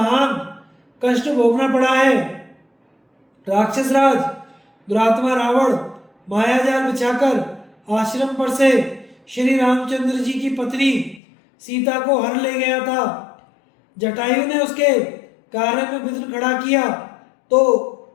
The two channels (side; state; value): right; drops out; at 11.2 s